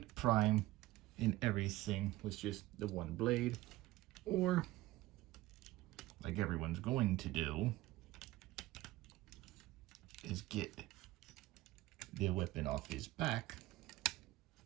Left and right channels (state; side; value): quieter; left; 17.4 dB